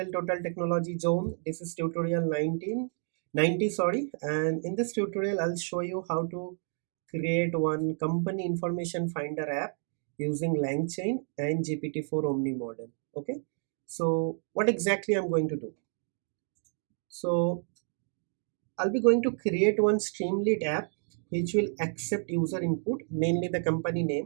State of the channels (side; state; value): left; silent; 58 dB below the other